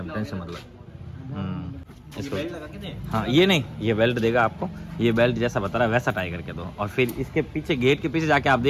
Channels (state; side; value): identical; both; correlation 1.00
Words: टेंशन मतलब। इसको हाँ, ये नहीं, ये बेल्ट देगा आपको, ये बेल्ट जैसा बता रहा है वैसा टाई करके दो। और फिर इसके पीछे, गेट के पीछे जाके आप